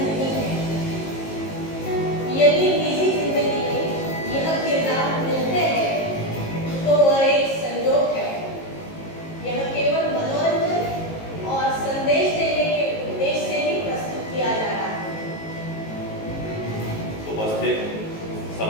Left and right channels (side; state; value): right; late; 19 ms